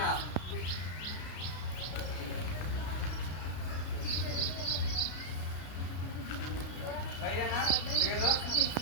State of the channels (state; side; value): late; right; 33 ms